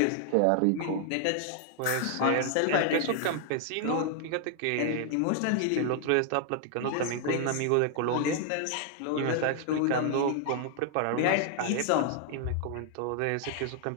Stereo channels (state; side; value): different; both; correlation 0.00